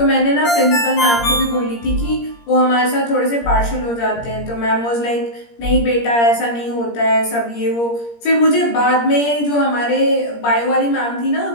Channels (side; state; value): right; late; 17 ms